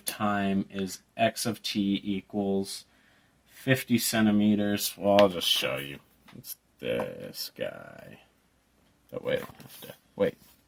time is x of t equals 50 centimeters. Well, I'll just show you. It's this guy. But wait,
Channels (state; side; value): identical; both; correlation 1.00